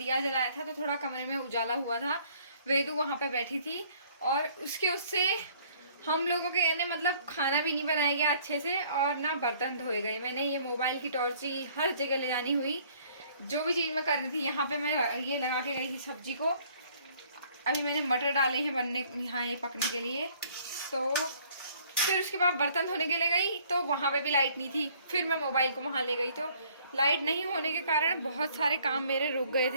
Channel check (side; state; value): both; inverted; correlation -0.59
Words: जलाया था तो थोड़ा कमरे में उजाला हुआ था। वेदू वहाँ पे बैठी थी और उससे हम लोगों के यानी मतलब खाना भी नहीं बनाया गया अच्छे से और ना बर्तन धोए गए। मैंने ये मोबाइल की टॉर्च ही हर जगह ले जानी हुई, जो भी चीज़ मैं करनी थी। यहाँ पे मैं ये लगा के गई थी सब्जी को। अभी मैंने मटर डाले हैं बनने यहाँ ये पकने के लिए। तो फिर उसके बाद बर्तन धोने के लिए गई तो वहाँ पे भी लाइट नहीं थी। फिर मैं मोबाइल को वहाँ ले गई तो लाइट नहीं होने के कारण बहुत सारे काम मेरे रुक गए